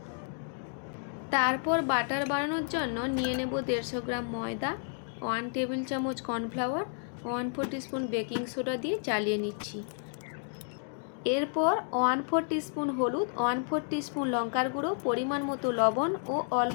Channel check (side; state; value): right; silent; 57 dB below the other